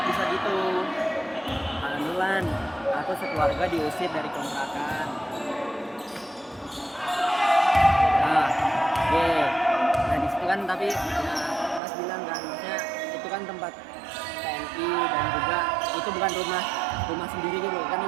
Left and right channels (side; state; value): left; drops out; at 11.8 s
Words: bisa gitu? Lan, aku sekeluarga diusir dari kontrakan. Nah, oke. Nah di situ kan tapi ya, mas bilang kan, maksudnya itu kan tempat TNI dan juga itu bukan rumah sendiri gitu kan,